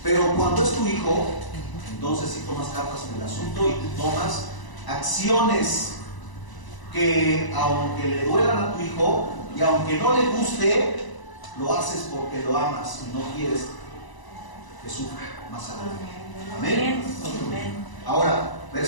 Pero cuando es tu hijo, entonces sí tomas cartas en el asunto y tú tomas acciones que, aunque le duelan a tu hijo y aunque no le guste, lo haces porque lo amas y no quieres que sufra más adelante. Amén. Ahora,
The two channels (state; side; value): late; right; 1.0 ms